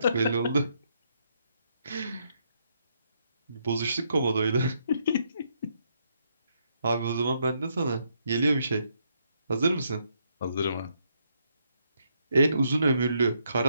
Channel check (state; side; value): inverted; both; correlation -0.76